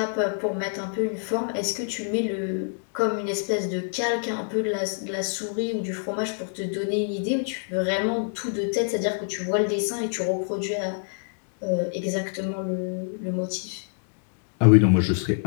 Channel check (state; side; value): silent; right; digital silence